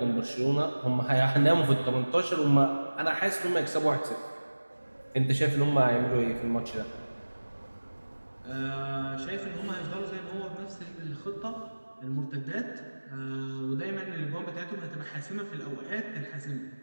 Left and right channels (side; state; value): both; inverted; correlation -1.00